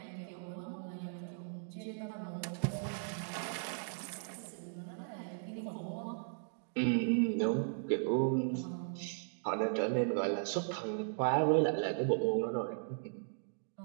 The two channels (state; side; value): silent; left; digital silence